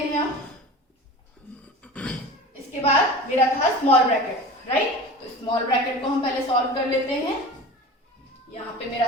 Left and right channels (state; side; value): normal; both; correlation 0.35